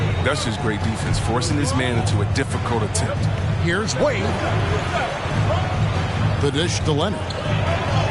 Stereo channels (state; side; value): identical; both; correlation 1.00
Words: That's just great defense, forcing this man into a difficult attempt. Here's Wade. The dish to Leonard.